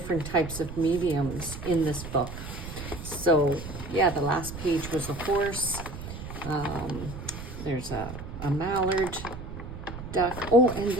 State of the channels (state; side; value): noise; right; rumble, 10 dB below the sound